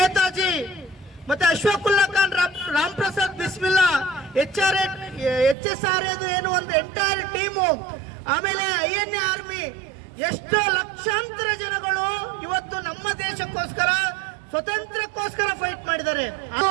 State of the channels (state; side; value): drops out; left; at 5.6 s